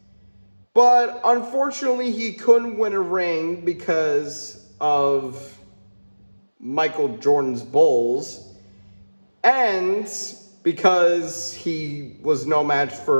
But unfortunately, he couldn't win a ring because of Michael Jordan's Bulls. And because he was no match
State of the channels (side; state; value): both; inverted; correlation -1.00